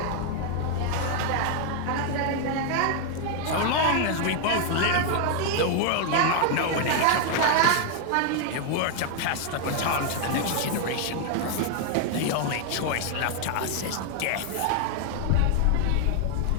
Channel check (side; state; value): both; different; correlation 0.00